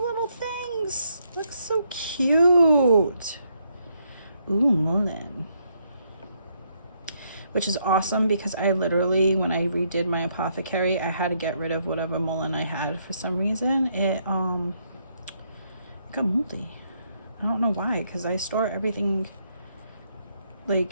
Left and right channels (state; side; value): inverted; both; correlation -0.75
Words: things. Looks so cute. Ooh, mullein. Which is awesome because I literally, when I redid my apothecary, I had to get rid of whatever mullein I had for some reason. It got moldy. I don't know why, because I store everything